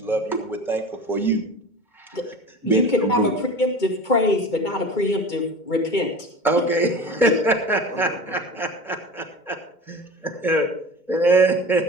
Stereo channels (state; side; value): late; right; 2.2 ms